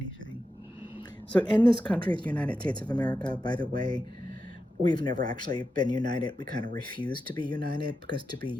So in this country, the United States of America, by the way, we've never actually been united. We kind of refuse to be united because to be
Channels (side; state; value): both; normal; correlation 0.89